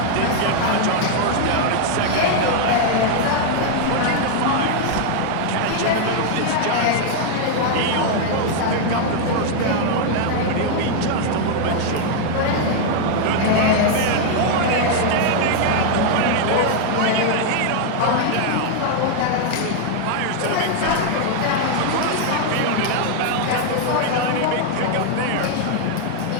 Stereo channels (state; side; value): different; both; correlation 0.00